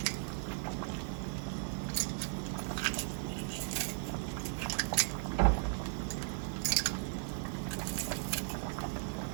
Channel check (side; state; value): left; silent; digital silence